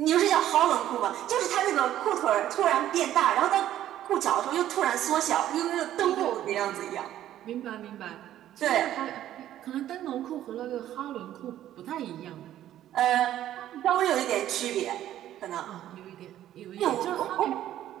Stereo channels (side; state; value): left; quieter; 12.3 dB